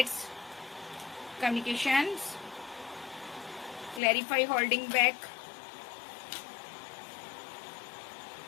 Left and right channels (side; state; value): right; drops out; at 4.0 s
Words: communications, clarify holding back,